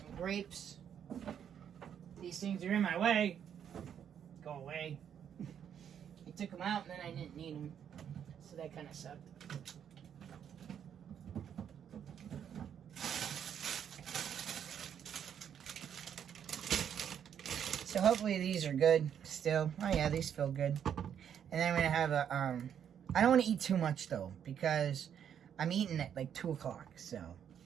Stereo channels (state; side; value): quieter; left; 8.7 dB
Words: grapes. These things are in my way. Go away. I took them out and then I didn't need them. So that kind of sucked. So hopefully these are good still. Oh yeah, these feel good. And then I'm gonna have a I don't want to eat too much though, because I'm eating at like 2 o'clock. So